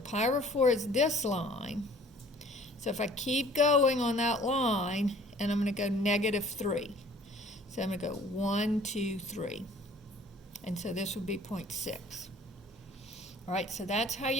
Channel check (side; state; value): both; normal; correlation 0.52